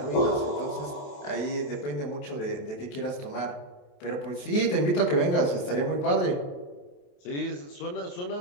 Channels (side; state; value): right; late; 27 ms